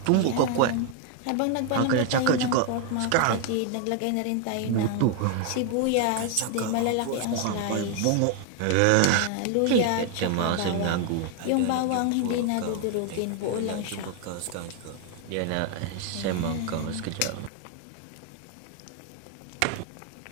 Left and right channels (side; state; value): both; different; correlation 0.00